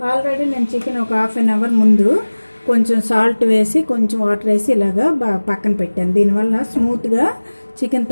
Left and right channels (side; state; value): both; inverted; correlation -1.00